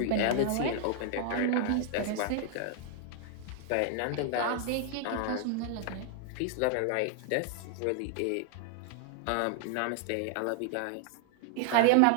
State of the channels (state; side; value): different; both; correlation 0.00